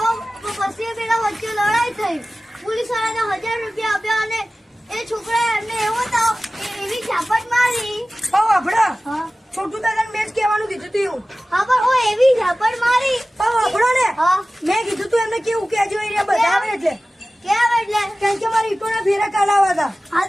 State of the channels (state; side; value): normal; both; correlation 0.97